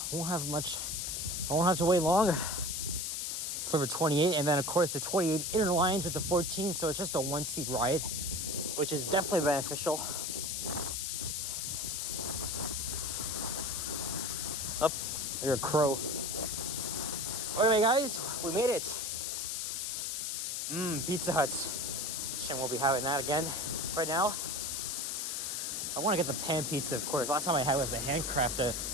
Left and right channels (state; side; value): noise; left; hiss, 2 dB below the sound